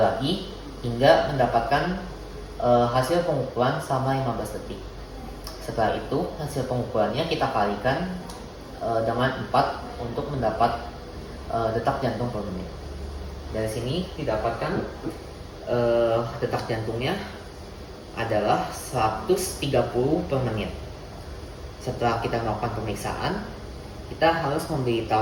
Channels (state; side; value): identical; both; correlation 1.00